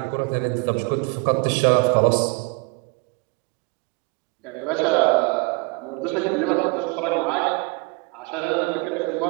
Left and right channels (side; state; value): left; quieter; 28.4 dB